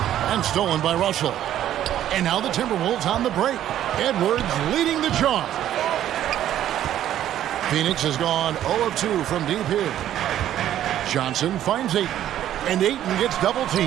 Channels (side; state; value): left; quieter; 11.7 dB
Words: And stolen by Russell. And now the Timberwolves on the break. Edwards leading the charge. Phoenix has gone 0 of 2 from deep here. Johnson finds Ayton. And Ayton gets double